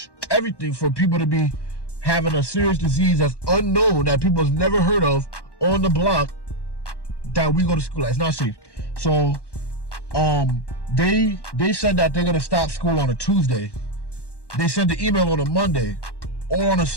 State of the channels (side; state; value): right; late; 1.1 ms